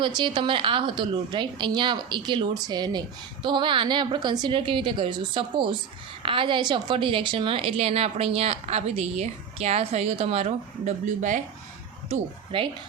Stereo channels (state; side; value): quieter; left; 7.3 dB